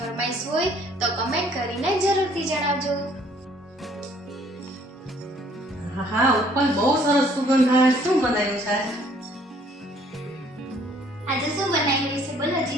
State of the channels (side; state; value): both; normal; correlation 0.60